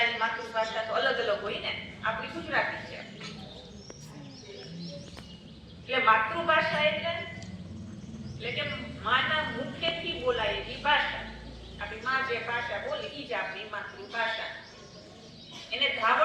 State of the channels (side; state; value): both; identical; correlation 1.00